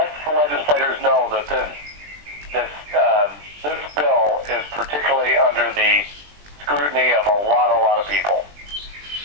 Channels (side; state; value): left; late; 20 ms